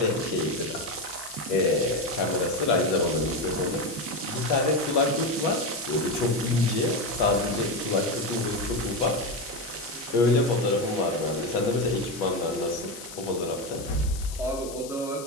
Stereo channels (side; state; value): left; noise; hiss, 13 dB below the sound